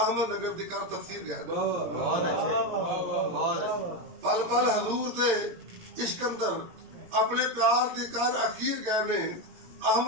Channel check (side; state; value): left; late; 17 ms